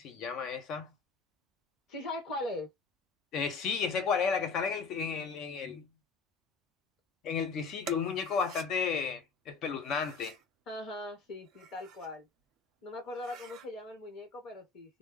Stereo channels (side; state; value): right; quieter; 4.9 dB